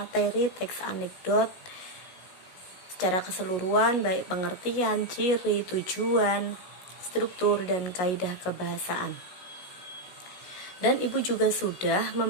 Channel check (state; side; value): late; right; 16 ms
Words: teks anekdot secara keseluruhan, baik pengertian, ciri, tujuan, struktur, dan kaidah kebahasaan. Dan Ibu juga sudah